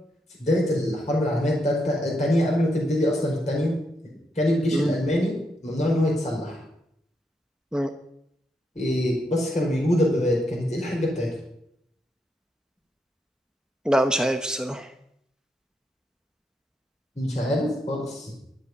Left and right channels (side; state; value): both; normal; correlation 0.80